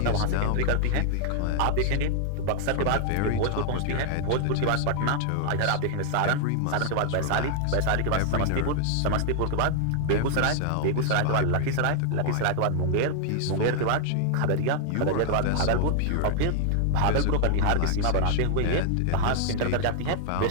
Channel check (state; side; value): different; both; correlation 0.00